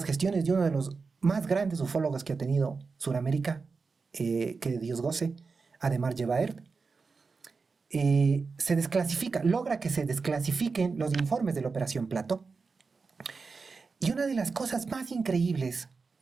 gestiones de uno de los más grandes ufólogos que ha tenido Sudamérica, que Dios goce, Ademar Yevaert, se desclasifica, logra que se desclasifiquen los informes de la Operación Plato. Y una de las cosas más increíbles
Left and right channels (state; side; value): quieter; left; 4.6 dB